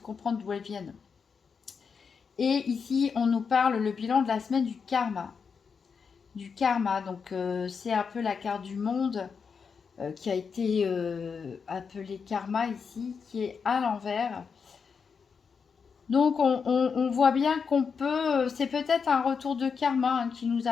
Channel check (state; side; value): quieter; right; 5.9 dB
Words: d'où elles viennent. Et ici, on nous parle le bilan de la semaine du karma. Du karma, donc c'est un peu la carte du monde qui a été appelée karma ici, qui est à l'envers. Donc on voit bien qu'on peut, c'est peut-être un retour de karma qui nous